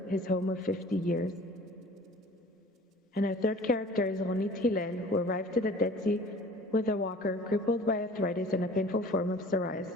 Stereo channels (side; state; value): both; normal; correlation 0.46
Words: his home of 50 years. And our third character is Ronit Hillel, who arrived to the Dead Sea with a walker, crippled by arthritis and a painful form of